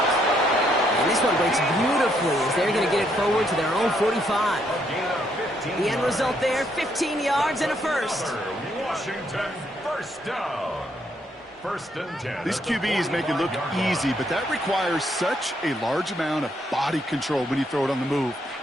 And this one breaks beautifully as they're going to get it forward to their own 45. The end result there, 15 yards and a first. Washington, first down. 1st and 10. These QBs make it look easy, but that requires such a large amount of body control when you throw it on the move.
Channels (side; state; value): both; normal; correlation 0.73